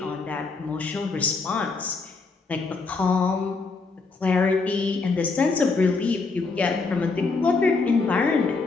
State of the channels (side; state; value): right; quieter; 4.1 dB